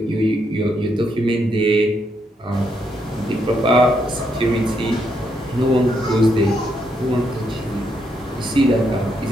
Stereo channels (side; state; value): both; normal; correlation 0.77